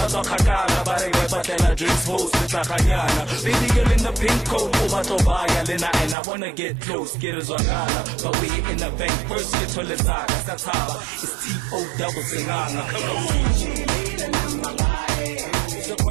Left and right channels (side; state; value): left; drops out; at 6.2 s